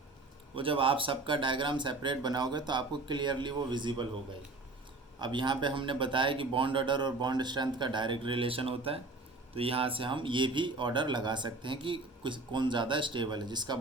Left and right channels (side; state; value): left; quieter; 3.2 dB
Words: वो जब आप सबका डायग्राम सेपरेट बनाओगे तो आपको क्लियरली वो विजिबल होगा ही। अब यहाँ पे हमने बताया कि बॉन्ड ऑर्डर और बॉन्ड स्ट्रेंथ का डायरेक्ट रिलेशन होता है, तो यहाँ से हम ये भी ऑर्डर लगा सकते हैं कि कौन ज़्यादा स्टेबल है। जिसका